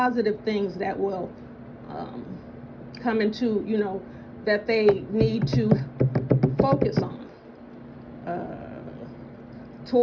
things that will come into, that they need to focus on.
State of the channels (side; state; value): both; identical; correlation 1.00